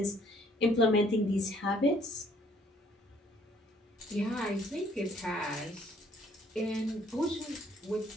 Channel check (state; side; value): normal; both; correlation 0.62